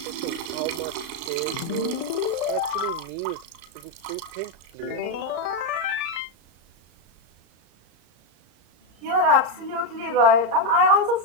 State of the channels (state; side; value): late; left; 35 ms